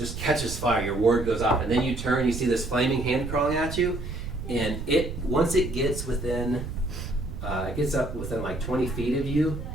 catches fire. Your ward goes off, and then you turn. You see this flaming hand crawling at you, and once it gets within, it gets up within like 20 feet of you.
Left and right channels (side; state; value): right; noise; rumble, 7 dB below the sound